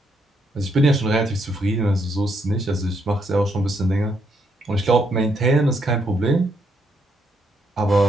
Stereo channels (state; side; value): normal; both; correlation 0.75